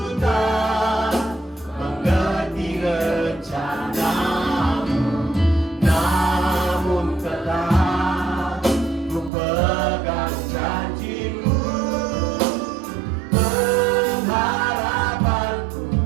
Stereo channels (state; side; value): drops out; left; at 9.3 s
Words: tak mengerti rencanamu, namun tetap ku pegang janjimu. Pengharapanku